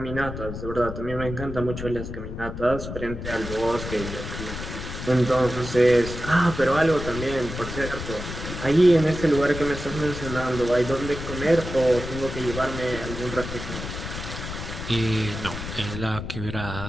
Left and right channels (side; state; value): left; noise; rumble, 8 dB below the sound